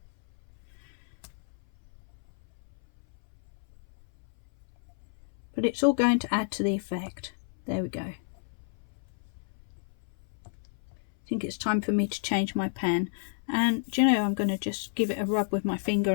But it's all going to add to the effect. There we go. I think it's time for me to change my pen. And do you know, I'm going to just give it a rub with my finger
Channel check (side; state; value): right; silent; 57 dB below the other